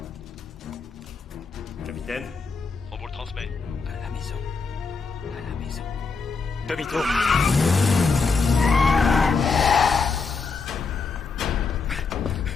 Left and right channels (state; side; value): quieter; right; 4.7 dB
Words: Capitaine? On vous le transmet. À la maison. À la maison. Demi-tour.